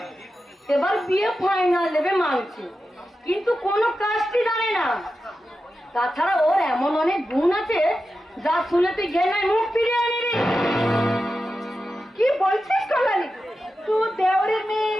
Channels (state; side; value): normal; both; correlation 0.91